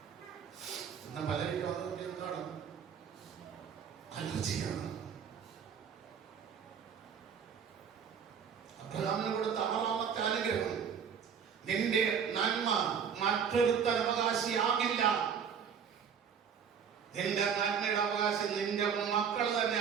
ഇന്ന് പലരും അതുകൊണ്ട് എന്താണ് അലർജിയാണ്. അബ്രഹാമിന് കൊടുത്ത 6ാമത്തെ അനുഗ്രഹം, നിന്റെ നന്മ മറ്റൊരുത്തൻ അവകാശിയാകില്ല. നിന്റെ നന്മയുടെ അവകാശം നിന്റെ മക്കൾ തന്നെ.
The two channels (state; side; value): quieter; left; 7.2 dB